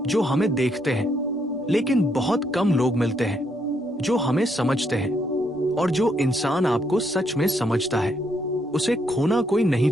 जो हमें देखते हैं, लेकिन बहुत कम लोग मिलते हैं जो हमें समझते हैं। और जो इंसान आपको सच में समझता है, उसे खोना कोई नहीं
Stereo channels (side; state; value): both; normal; correlation 0.74